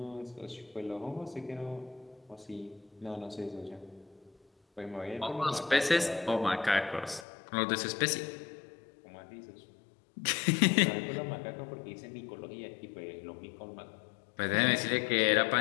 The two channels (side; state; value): right; drops out; at 7.2 s